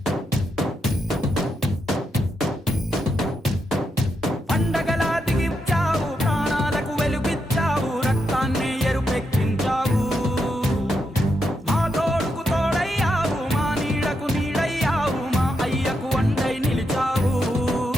పండగలా దిగి వచ్చావు, ప్రాణాలకు వెలుగిచ్చావు, రక్తాన్నే ఎరుపెక్కించావు. మా తోడుకు తోడయ్యావు, మా నీడకు నీడయ్యావు, మా అయ్యకు వండై నిలిచావు.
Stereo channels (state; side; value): normal; both; correlation 0.83